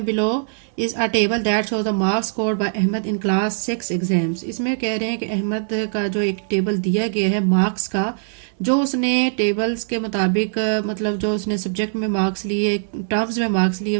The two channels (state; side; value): silent; left; digital silence